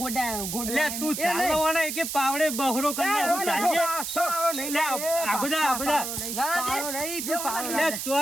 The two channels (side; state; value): right; noise; hiss, 4 dB below the sound